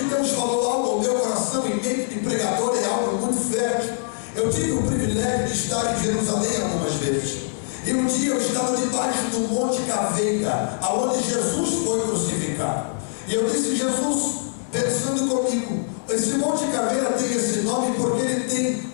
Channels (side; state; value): right; silent; digital silence